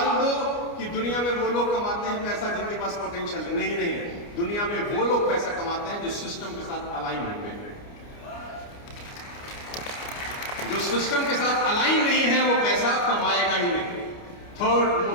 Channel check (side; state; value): right; late; 29 ms